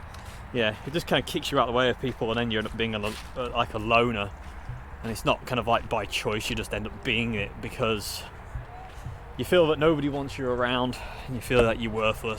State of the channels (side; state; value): both; identical; correlation 1.00